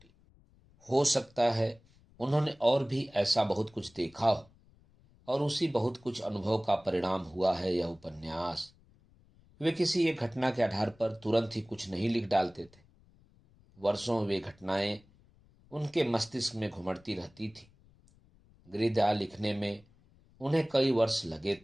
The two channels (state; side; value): noise; left; rumble, 29 dB below the sound